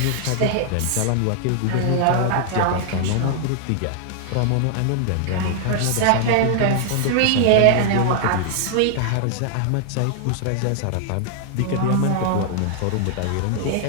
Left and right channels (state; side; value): different; both; correlation 0.00